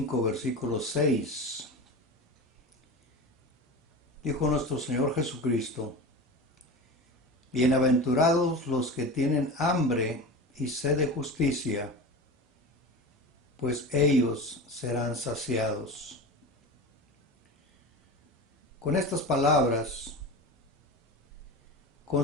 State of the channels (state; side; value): normal; both; correlation 0.29